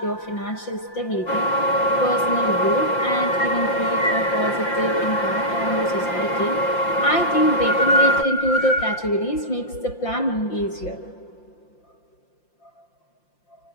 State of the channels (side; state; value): right; late; 5.7 ms